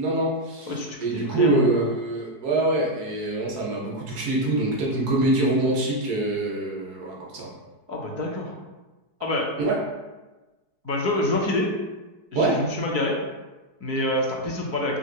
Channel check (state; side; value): late; left; 4.6 ms